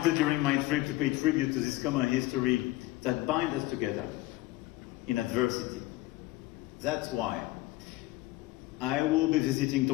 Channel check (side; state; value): right; quieter; 18.4 dB